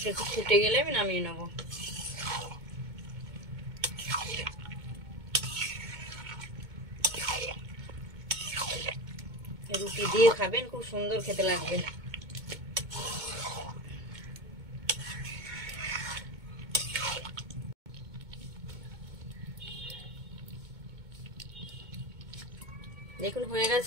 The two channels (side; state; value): left; late; 2.2 ms